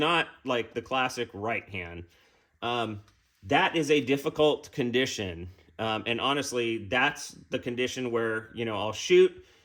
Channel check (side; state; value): both; identical; correlation 1.00